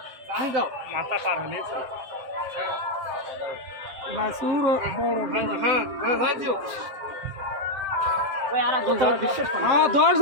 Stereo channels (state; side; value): late; left; 7.7 ms